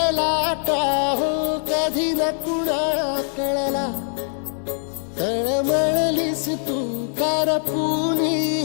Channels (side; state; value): right; silent; digital silence